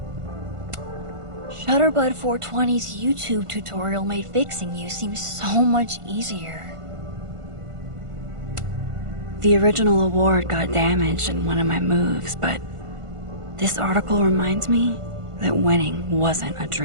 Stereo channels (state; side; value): late; left; 1.5 ms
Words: Shutterbud 420's YouTube tutorial made fixing you seem so much easier. The original award got damaged in one of my moves, but this article reminds me that winning wasn't a